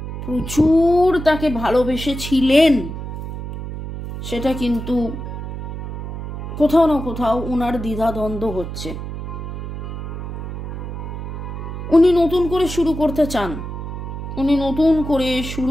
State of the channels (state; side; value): noise; right; hum, 7 dB below the sound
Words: প্রচুর তাকে ভালোবেসেছিলেন সেটা কিন্তু কোথাও না কোথাও ওনার দ্বিধাদ্বন্দ্ব হচ্ছে। উনি নতুন করে শুরু